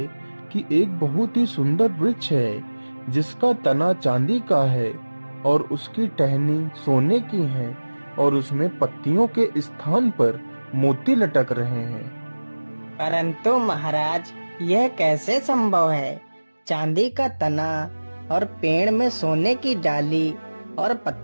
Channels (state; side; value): inverted; both; correlation -1.00